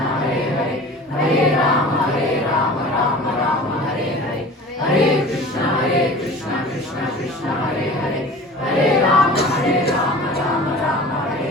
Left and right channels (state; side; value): normal; both; correlation 0.40